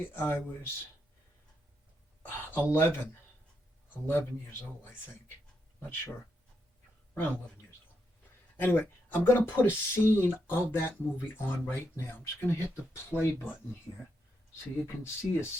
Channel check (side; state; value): both; normal; correlation 0.81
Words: I was 11, 11 years old. I think, not sure, around 11 years old. Anyway, I'm going to put a scene of that movie on right now. I'm just going to hit the play button here so you can see a